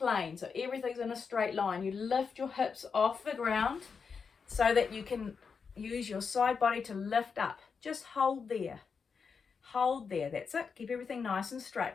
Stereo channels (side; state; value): right; quieter; 5.7 dB